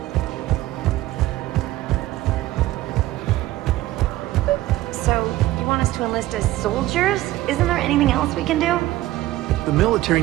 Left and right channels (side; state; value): left; quieter; 16.1 dB